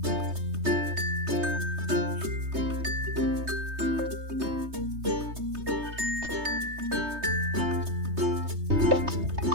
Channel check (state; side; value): late; left; 3.2 ms